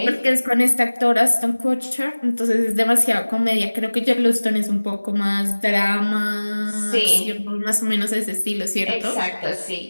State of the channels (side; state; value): both; inverted; correlation -1.00